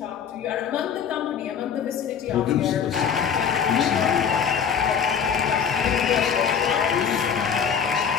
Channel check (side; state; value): right; quieter; 7.3 dB